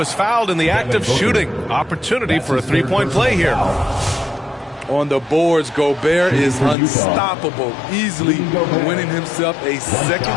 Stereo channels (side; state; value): right; drops out; at 6.8 s